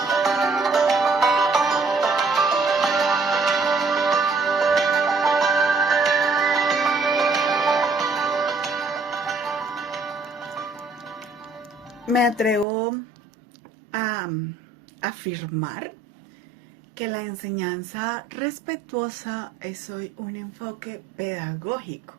Me atrevo a afirmar que la enseñanza respetuosa es hoy un enfoque pedagógico,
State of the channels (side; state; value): left; drops out; at 12.7 s